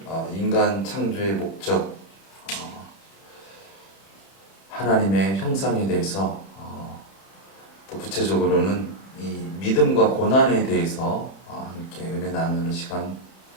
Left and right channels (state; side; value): late; right; 31 ms